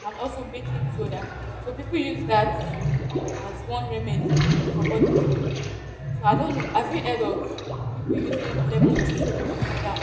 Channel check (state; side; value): identical; both; correlation 1.00